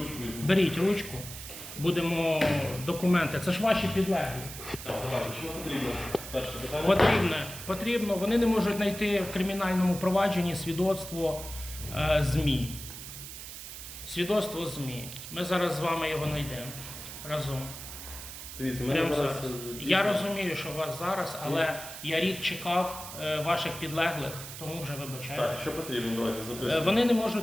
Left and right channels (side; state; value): right; noise; hiss, 11 dB below the sound